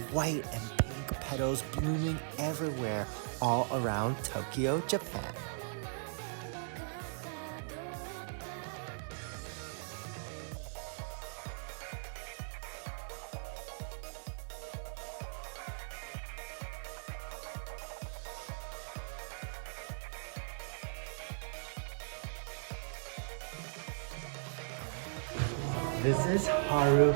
white and pink petals blooming everywhere all around Tokyo, Japan. This is Haru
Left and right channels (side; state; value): left; silent; 52 dB below the other